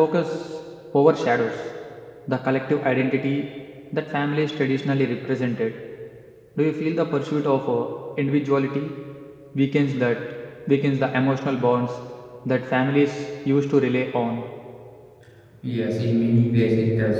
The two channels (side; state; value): both; identical; correlation 1.00